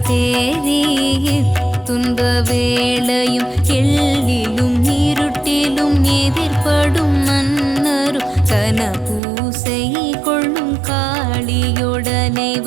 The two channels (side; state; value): left; drops out; at 9.2 s